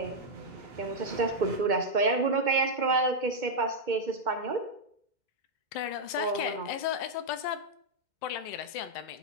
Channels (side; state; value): left; late; 2.2 ms